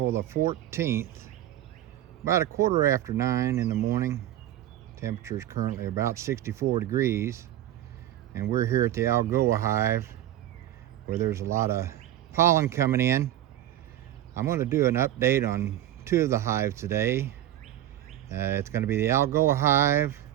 the 14th, about 9:15 in the morning. Temperature is currently about 64 degrees, and we're here at the Algoa hive where there's a lot of pollen coming in. I'm going to do an update on two of the hives today. It's going to be the Algoa hive,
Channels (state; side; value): quieter; left; 12.9 dB